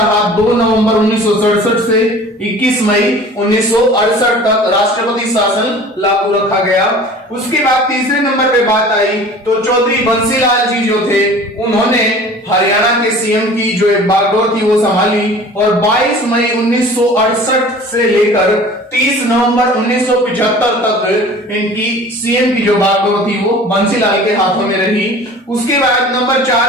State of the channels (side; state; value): both; normal; correlation 0.44